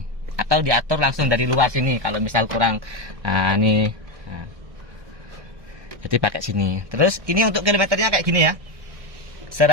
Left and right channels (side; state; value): left; late; 1.2 ms